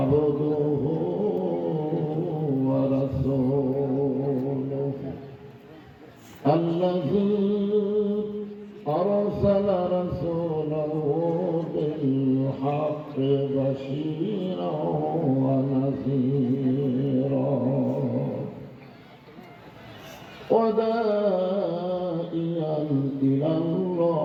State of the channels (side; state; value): both; identical; correlation 1.00